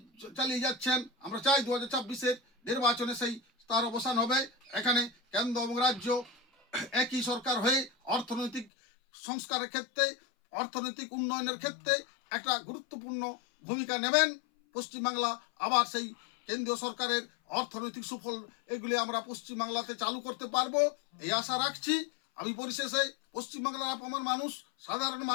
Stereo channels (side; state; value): right; drops out; at 8.7 s